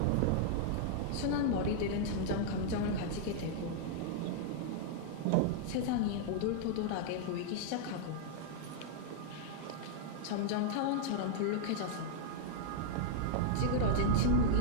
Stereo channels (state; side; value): different; both; correlation -0.01